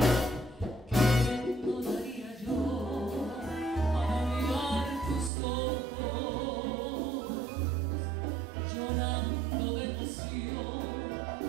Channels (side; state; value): left; drops out; at 5.3 s